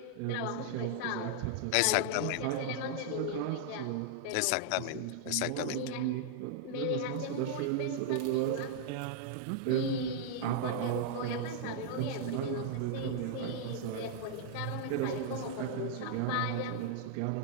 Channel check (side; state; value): both; different; correlation -0.01